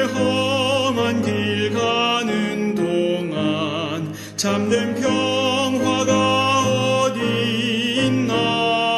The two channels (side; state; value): both; identical; correlation 1.00